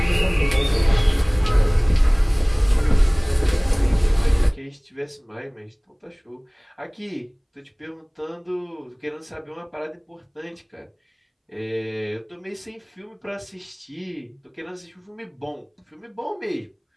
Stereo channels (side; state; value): both; identical; correlation 1.00